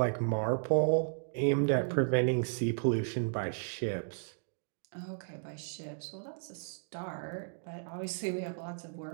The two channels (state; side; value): silent; left; digital silence